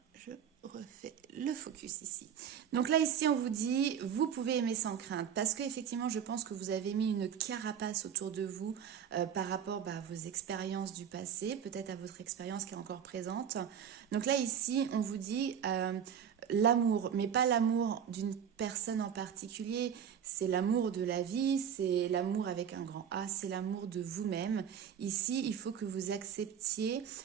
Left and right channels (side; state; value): left; quieter; 8.3 dB